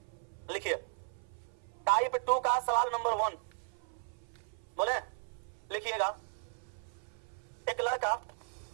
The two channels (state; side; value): silent; left; 54 dB below the other